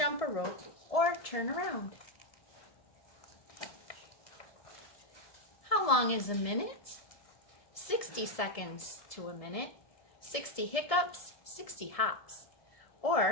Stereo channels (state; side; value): late; right; 1.7 ms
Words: a rope, or turn around. How long is a minute? 60 seconds to a minute, 60 hiccups, 60 hops.